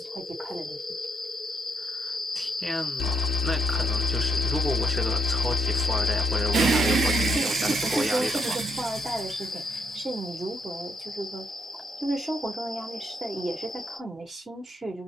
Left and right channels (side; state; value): both; normal; correlation 0.78